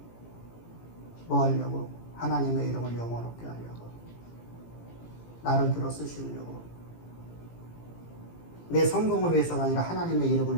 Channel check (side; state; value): right; late; 18 ms